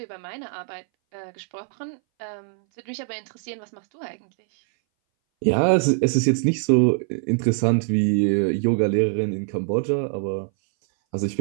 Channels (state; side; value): silent; left; 61 dB below the other